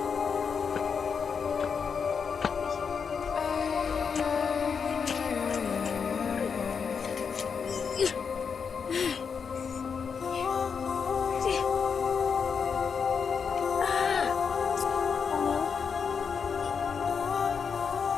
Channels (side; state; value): right; quieter; 6.2 dB